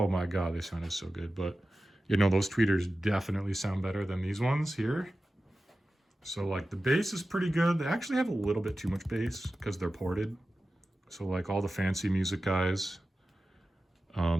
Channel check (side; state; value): both; normal; correlation 0.94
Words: my god, they sounded so good. But you know, those tweeters definitely sound better than these ones here. So like the bass is pretty good. They actually have a little bit too much bass because they're ported. So like all the fancy music guys,